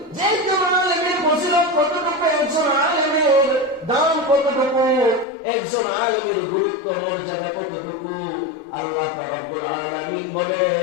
যে একজন আলেমের ফজিলত কতটুকু, একজন আলেমের দাম কতটুকু, একজন আলেমের গুরুত্ব মর্যাদা কতটুকু। আল্লাহ রাব্বুল আলামিন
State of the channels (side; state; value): right; drops out; at 5.2 s